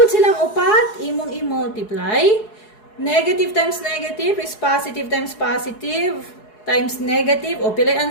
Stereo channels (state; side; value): late; right; 4.7 ms